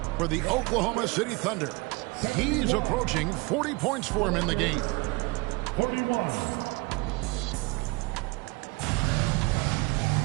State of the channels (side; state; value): left; quieter; 26.2 dB